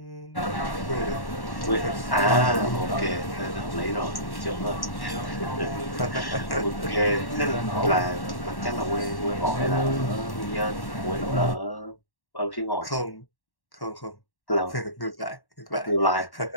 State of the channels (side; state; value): right; late; 1.1 ms